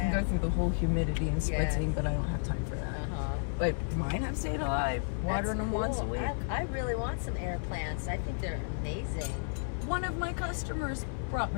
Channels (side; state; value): right; silent; 56 dB below the other